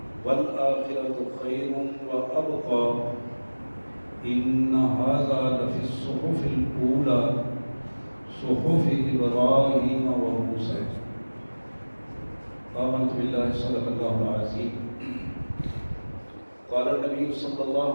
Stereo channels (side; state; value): both; inverted; correlation -1.00